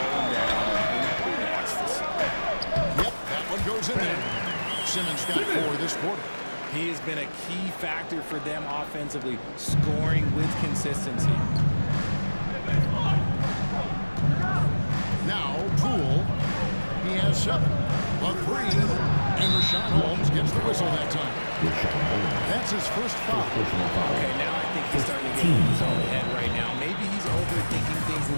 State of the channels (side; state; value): both; inverted; correlation -1.00